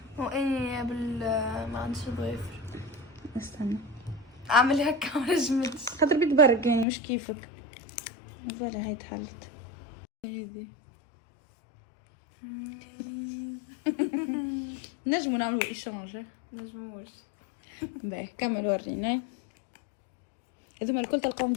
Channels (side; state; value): right; drops out; at 6.9 s